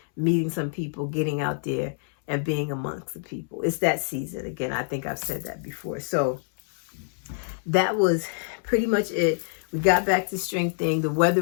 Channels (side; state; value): right; silent; 61 dB below the other